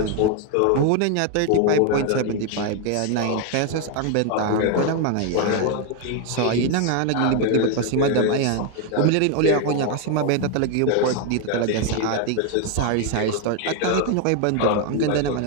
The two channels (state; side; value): different; both; correlation 0.01